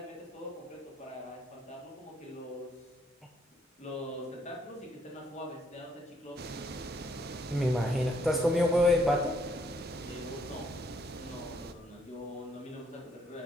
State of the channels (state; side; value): normal; both; correlation 0.69